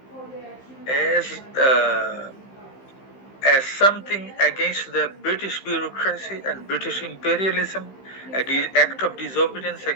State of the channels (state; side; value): late; right; 15 ms